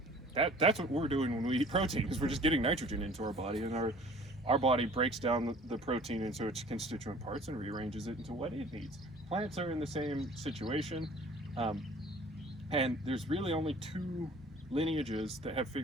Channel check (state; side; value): normal; both; correlation 0.49